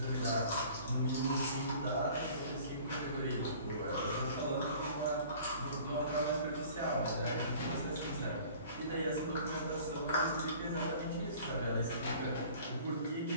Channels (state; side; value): inverted; both; correlation -0.48